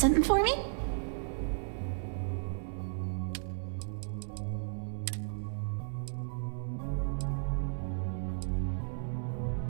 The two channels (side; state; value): left; silent; 55 dB below the other